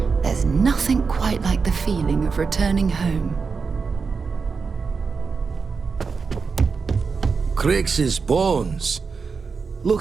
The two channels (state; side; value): quieter; left; 5.1 dB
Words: there's nothing quite like the feeling of returning home. Crix's bones.